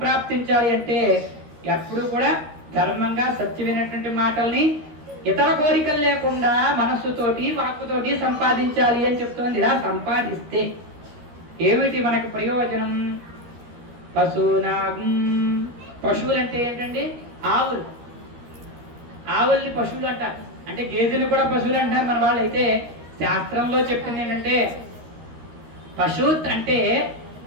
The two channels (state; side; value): late; left; 13 ms